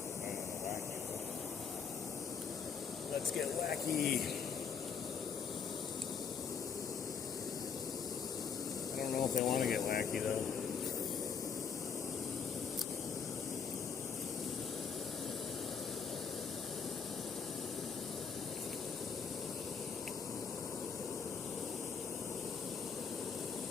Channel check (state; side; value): quieter; right; 6.3 dB